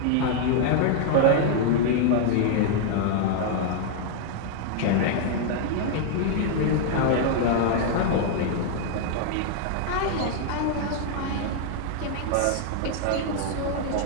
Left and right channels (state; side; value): different; both; correlation 0.00